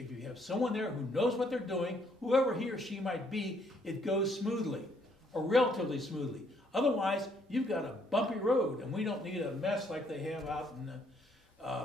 you have someone there who knows what they're doing, whoever he or she might be, it goes smoothly, or relatively smoothly. Otherwise, you've got a bumpy road, and we don't need a mess like they have out in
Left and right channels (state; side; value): normal; both; correlation 0.68